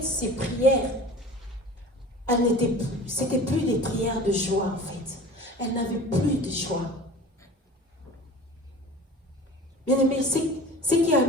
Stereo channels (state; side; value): normal; both; correlation 0.41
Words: ces prières, c'était plus des prières de joie en fait. Elle n'avait plus de joie. Bien aimé, ce qui a